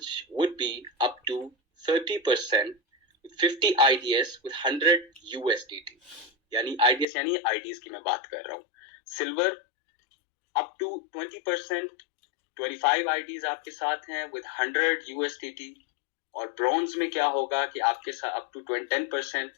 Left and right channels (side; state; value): right; drops out; at 7.1 s